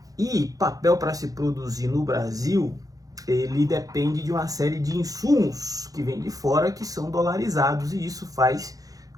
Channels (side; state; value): left; late; 0.17 ms